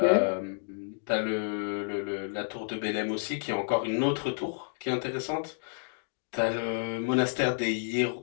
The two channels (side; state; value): right; silent; digital silence